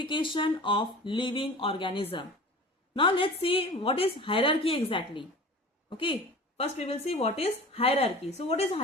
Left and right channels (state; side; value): normal; both; correlation 0.39